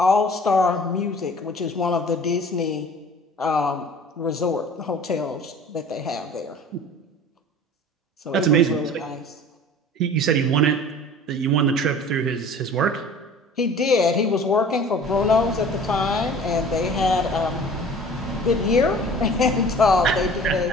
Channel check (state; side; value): normal; both; correlation 0.45